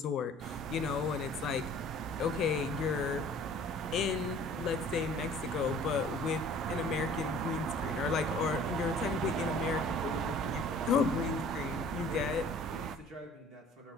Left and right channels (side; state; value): both; normal; correlation 0.50